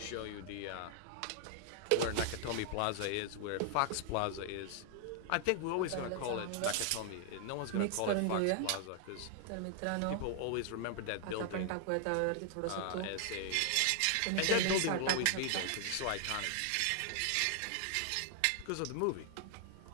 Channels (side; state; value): both; different; correlation 0.00